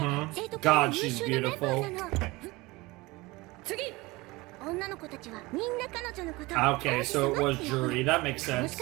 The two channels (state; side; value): quieter; left; 22.2 dB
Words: God, she's beautiful. Okay, so it was Juri. That makes sense.